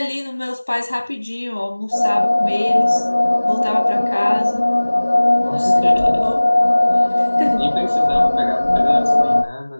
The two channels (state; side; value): inverted; both; correlation -1.00